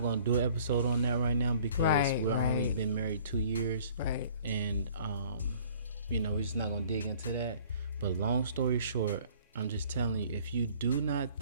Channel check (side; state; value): both; inverted; correlation -0.55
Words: going to do an episode on that right now, because we're only been married 2 years. And we're just not going to dig into that. But long story short, I'm just telling you, if you do not